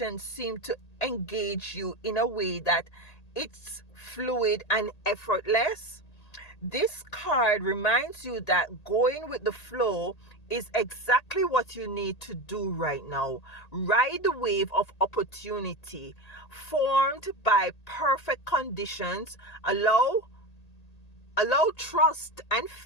seem to engage you in a way that it's fluid and effortless? This card reminds you that going with the flow is exactly what you need to do right now. Ride the wave of opportunity formed by perfect conditions. Allow trust and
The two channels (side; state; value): right; late; 1.8 ms